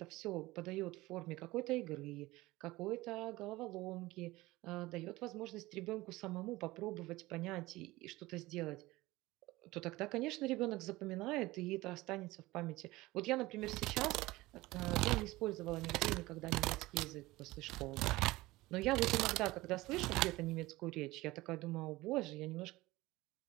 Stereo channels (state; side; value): quieter; left; 19.4 dB